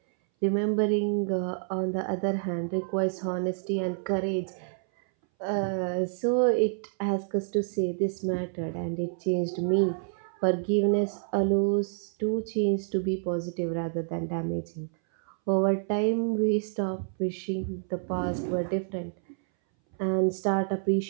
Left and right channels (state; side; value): silent; left; 59 dB below the other